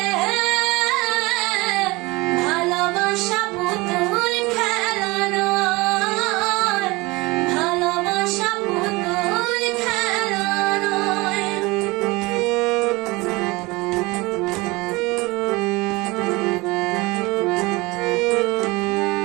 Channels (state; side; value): quieter; left; 23.2 dB